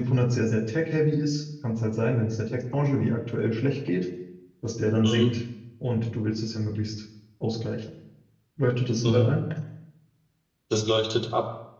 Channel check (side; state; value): both; identical; correlation 1.00